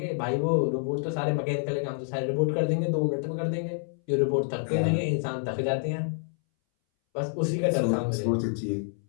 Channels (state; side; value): silent; right; 60 dB below the other